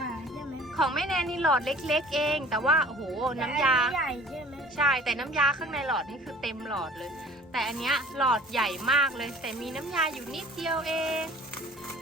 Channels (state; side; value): normal; both; correlation 0.48